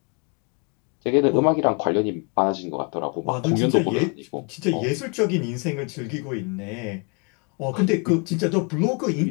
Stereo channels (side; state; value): right; quieter; 34.2 dB